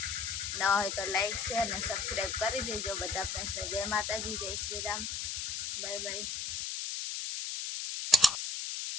ન હોય તો લાઈક શેર ને સબસ્ક્રાઈબ કરી દેજો બધા ફ્રેન્ડ્સને. જય માતાજી, જય શ્રી રામ, બાય બાય.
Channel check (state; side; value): noise; left; hiss, 3 dB below the sound